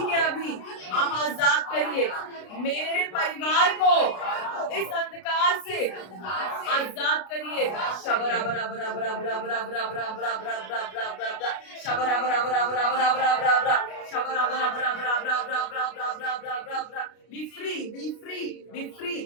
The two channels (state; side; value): late; right; 33 ms